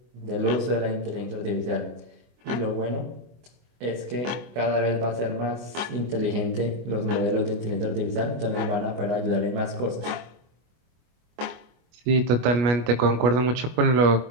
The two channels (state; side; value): late; left; 24 ms